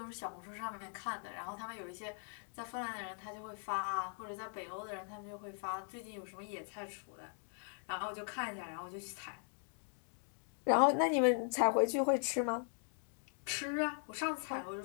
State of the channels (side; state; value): right; silent; 51 dB below the other